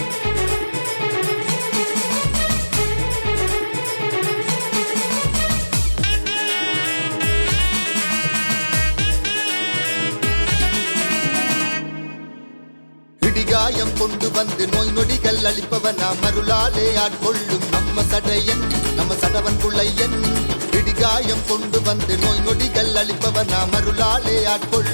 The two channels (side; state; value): both; inverted; correlation -1.00